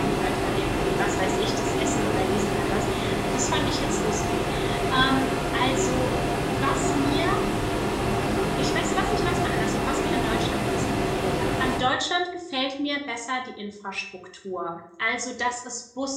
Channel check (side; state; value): both; identical; correlation 1.00